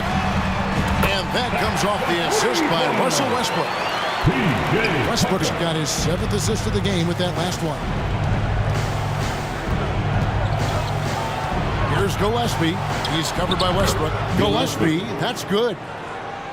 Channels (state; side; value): identical; both; correlation 1.00